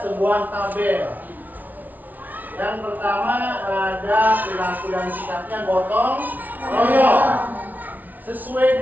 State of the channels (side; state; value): left; late; 0.080 ms